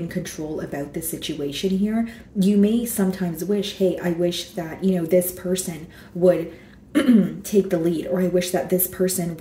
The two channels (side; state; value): both; identical; correlation 1.00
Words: control about this situation here, you may sometimes wish, hey, I wish that, this person would take the lead, or I wish that this person